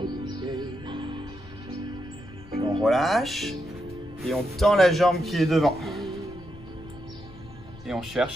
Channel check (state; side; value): noise; left; rumble, 18 dB below the sound